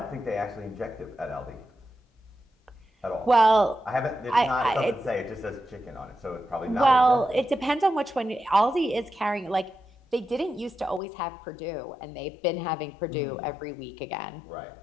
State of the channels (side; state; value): right; drops out; at 11.0 s